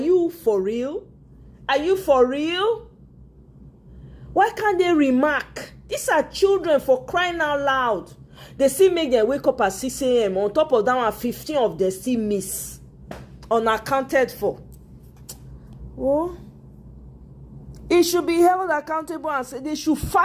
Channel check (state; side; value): identical; both; correlation 1.00